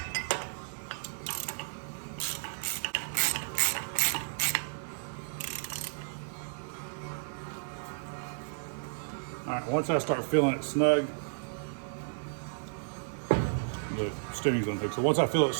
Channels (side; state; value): left; silent; digital silence